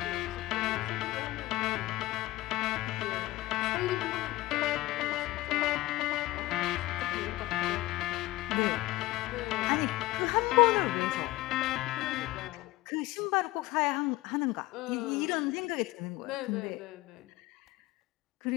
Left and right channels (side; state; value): right; quieter; 18.2 dB